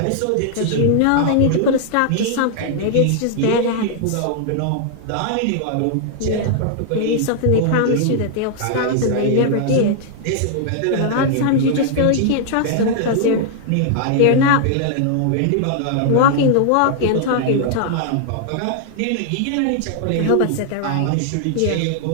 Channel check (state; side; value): different; both; correlation 0.00